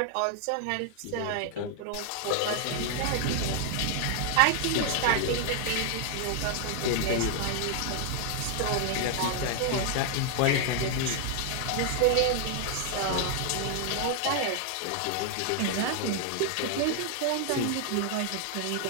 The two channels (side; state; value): both; different; correlation 0.00